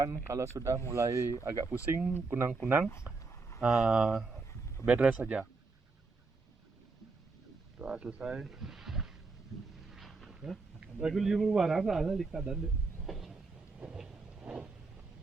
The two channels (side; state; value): left; quieter; 4.0 dB